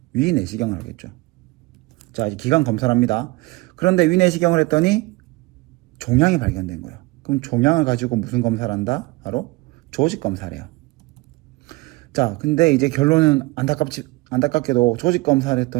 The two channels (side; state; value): left; quieter; 22.7 dB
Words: 위 내시경을 하겠죠. 자, 이제 기관 검사를 합니다. 그런데 위 내시경을 했더니 종양이 발견된 거예요. 그럼 종양을 가지고 무슨 검사를 한다? 바로 조직 검사를 해요. 자, 근데 이제 결론은 안타깝게도 조직 검사를